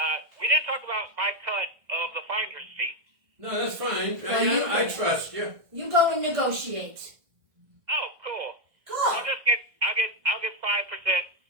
We didn't talk about my cut of the finder's fee. No, that's fine. Well, I trust you. You go and negotiate. Oh, cool. Cool. I'll get 5%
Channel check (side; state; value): left; late; 1.6 ms